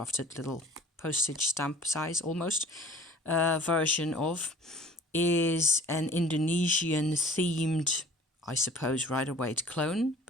little postage stamp size almost version of, is an Indonesian themed, I suppose, Rider-Waite clone,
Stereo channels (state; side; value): normal; both; correlation 0.49